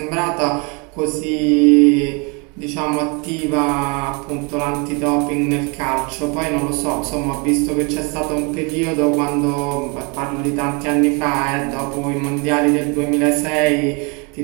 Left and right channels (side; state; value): left; quieter; 31.2 dB